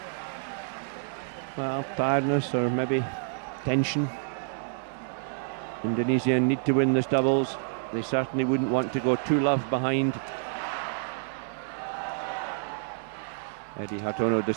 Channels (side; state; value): left; silent; digital silence